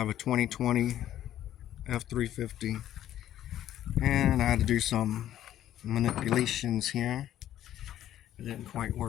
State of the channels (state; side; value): quieter; right; 12.1 dB